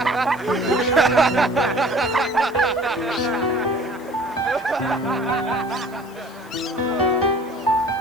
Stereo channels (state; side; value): noise; left; hiss, 26 dB below the sound